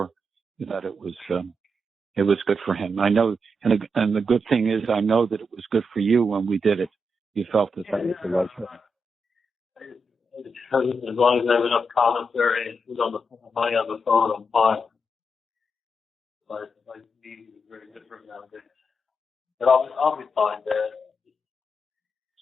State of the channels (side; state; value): both; normal; correlation 0.84